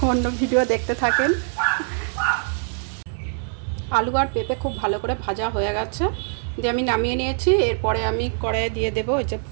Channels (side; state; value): left; silent; 63 dB below the other